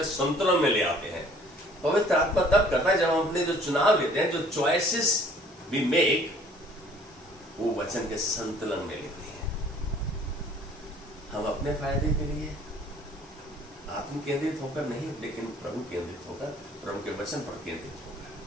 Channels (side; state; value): both; normal; correlation 0.55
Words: संतुलन में ले आते हैं। पवित्र आत्मा तब करता है जब हम अपने जो चुनाव लेते हैं, जो चॉइसेस वी मेक, वो वचन के संतुलन में लेते हैं। हम अपने फायदे के लिए आत्म केंद्रित होकर नहीं, लेकिन प्रभु केंद्रित होकर, प्रभु के वचन पर केंद्रित